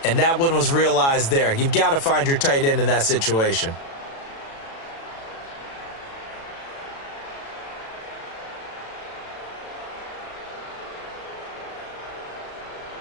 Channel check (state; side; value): late; right; 36 ms